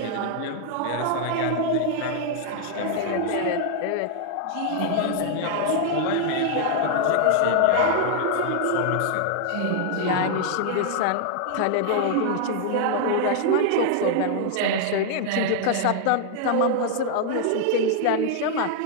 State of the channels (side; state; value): both; different; correlation 0.00